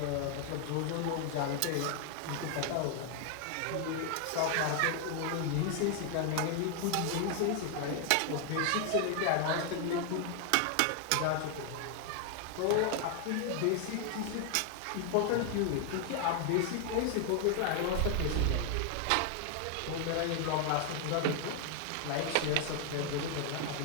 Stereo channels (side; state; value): both; different; correlation 0.00